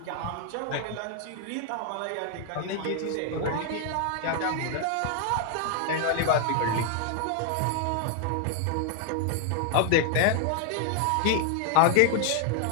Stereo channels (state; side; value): different; both; correlation 0.00